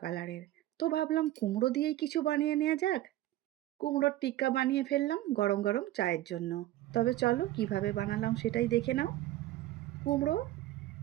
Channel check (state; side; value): quieter; left; 15.0 dB